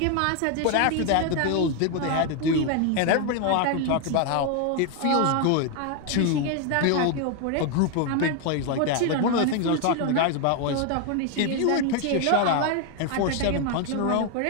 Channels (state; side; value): different; both; correlation 0.01